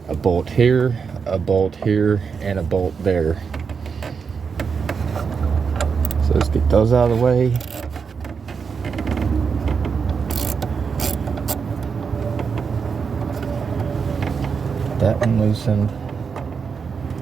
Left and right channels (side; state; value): left; quieter; 5.8 dB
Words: a bolt here, and a bolt there. So let's get those out of the way. That one loosened.